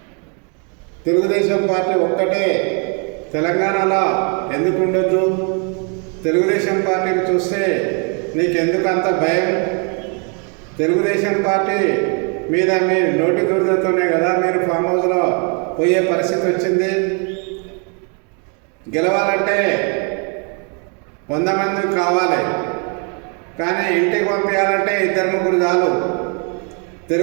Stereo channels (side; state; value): left; quieter; 37.3 dB